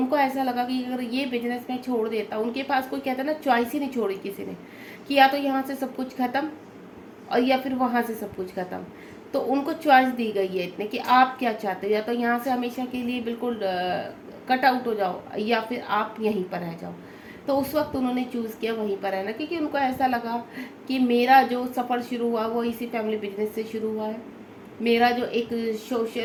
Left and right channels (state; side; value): identical; both; correlation 1.00